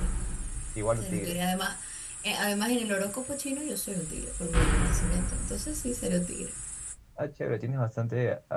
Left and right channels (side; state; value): both; identical; correlation 1.00